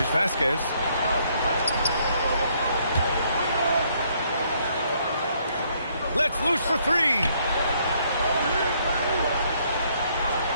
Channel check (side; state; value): both; inverted; correlation -0.68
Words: Vasquez. Let's loose for three.